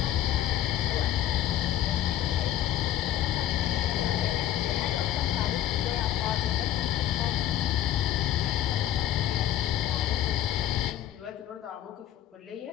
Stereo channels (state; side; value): quieter; right; 11.9 dB